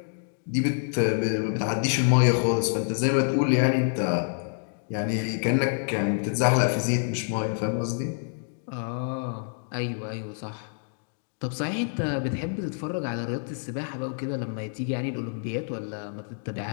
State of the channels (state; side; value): silent; right; digital silence